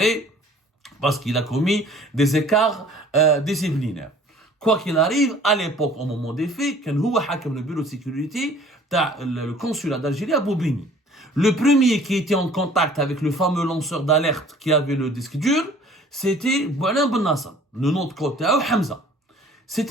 parce qu'il a commis des écarts disciplinaires. Quoi qu'il arrive, à l'époque, au moment des faits, quand il a le bureau de sécurité, le consulat d'Algérie à Bobigny. Le premier qui était en contact avec le fameux lanceur d'alerte qui avait le disque dur, c'était Boualem Ben Nasser. Le nom de côté, Hamza.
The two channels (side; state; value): both; normal; correlation 0.52